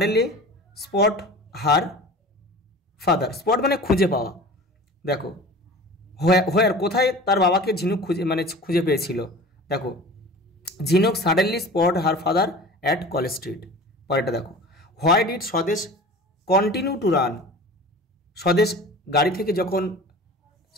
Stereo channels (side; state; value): both; normal; correlation 0.39